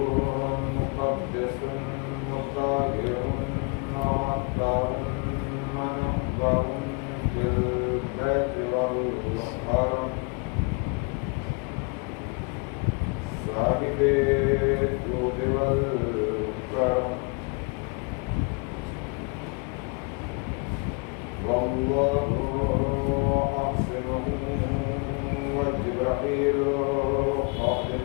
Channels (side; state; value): right; quieter; 34.6 dB